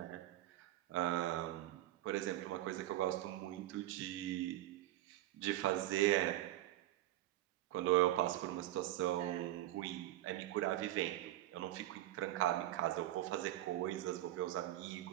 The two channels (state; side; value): quieter; left; 14.7 dB